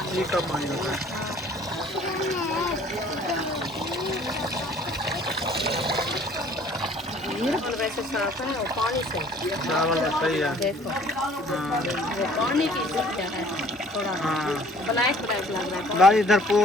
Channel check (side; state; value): both; normal; correlation 0.54